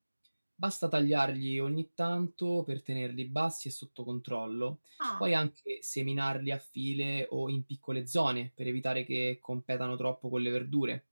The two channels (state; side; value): inverted; both; correlation -1.00